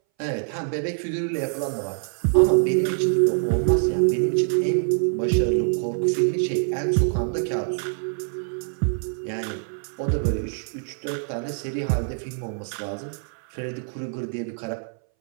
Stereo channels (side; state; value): left; silent; 60 dB below the other